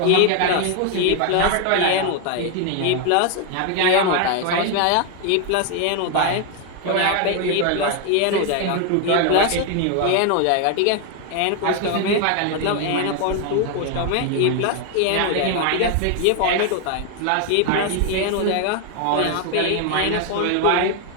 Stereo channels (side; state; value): both; different; correlation 0.01